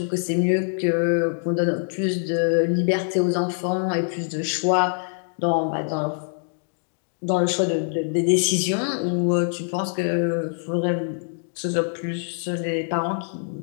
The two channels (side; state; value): right; silent; digital silence